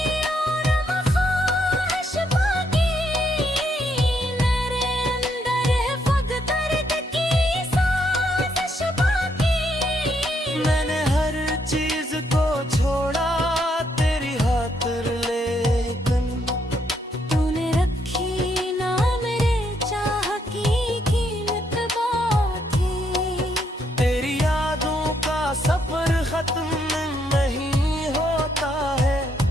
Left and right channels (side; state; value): both; normal; correlation 0.75